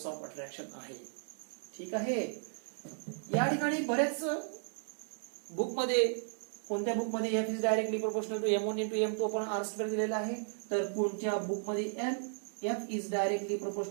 ऑफ अट्रॅक्शन आहे. ठीक आहे. या ठिकाणी बरेच बुक मध्ये, कोणत्या बुक मध्ये F is directly proportional to m1 into m2 upon r square दिलेला आहे, तर कोणत्या बुक मध्ये F is directly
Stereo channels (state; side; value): silent; left; digital silence